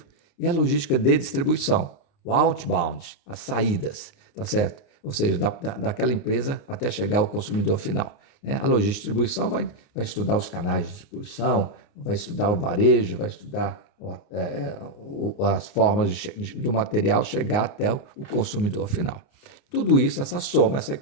e a logística de distribuição, o outbound, as saídas, tá certo? Ou seja, daquela empresa até chegar ao consumidor final. Né? A logística de distribuição vai estudar os canais de distribuição, vai estudar o varejo, vai estudar as formas do material chegar até o consumidor final. Tudo isso, essa soma, essa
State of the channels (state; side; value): late; right; 29 ms